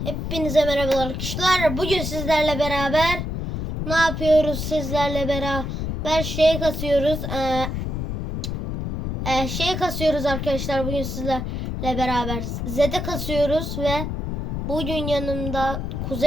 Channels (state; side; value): noise; left; rumble, 3 dB below the sound